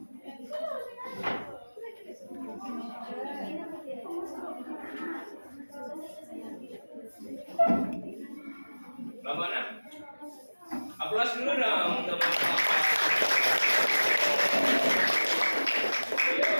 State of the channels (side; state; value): both; inverted; correlation -1.00